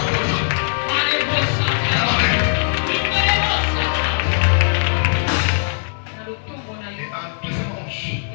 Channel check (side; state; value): right; silent; digital silence